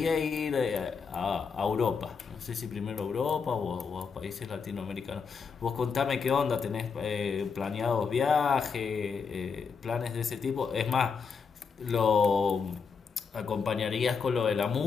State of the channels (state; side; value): quieter; right; 5.7 dB